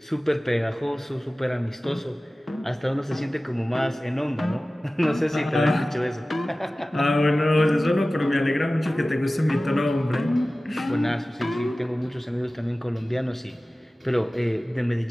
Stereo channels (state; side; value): normal; both; correlation 0.97